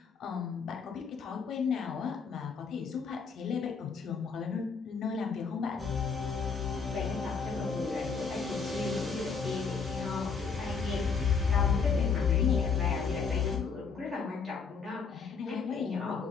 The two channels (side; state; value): right; quieter; 5.4 dB